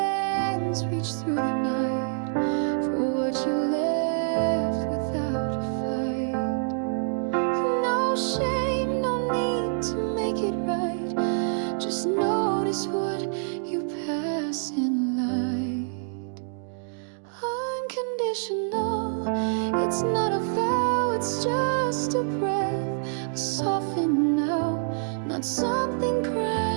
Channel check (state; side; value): silent; left; digital silence